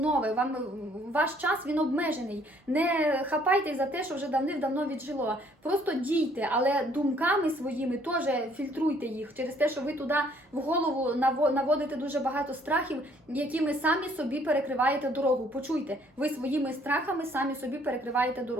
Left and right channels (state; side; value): normal; both; correlation 0.62